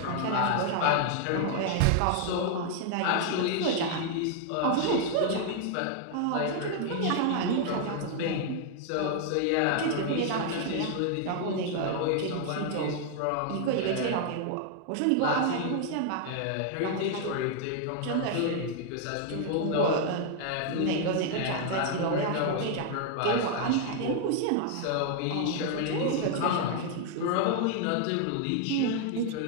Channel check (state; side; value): different; both; correlation 0.00